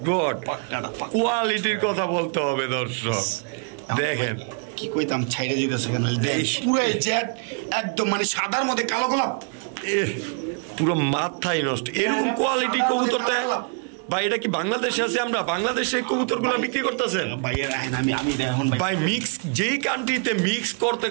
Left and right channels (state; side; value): quieter; left; 39.5 dB